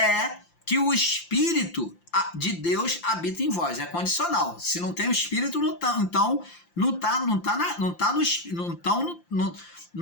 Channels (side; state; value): right; late; 5.8 ms